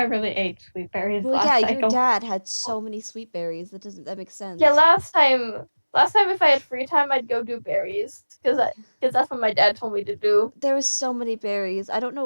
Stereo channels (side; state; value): both; inverted; correlation -1.00